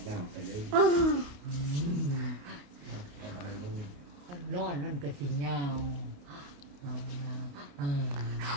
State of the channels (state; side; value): late; left; 28 ms